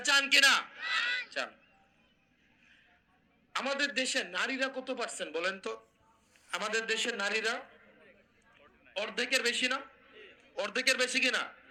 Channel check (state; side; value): identical; both; correlation 1.00